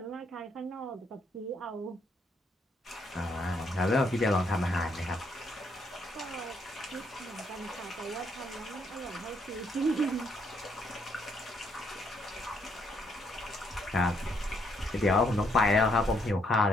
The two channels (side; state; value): both; normal; correlation 0.72